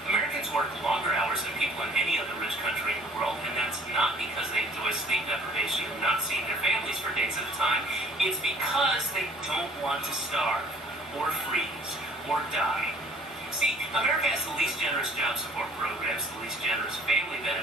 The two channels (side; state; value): both; normal; correlation 0.54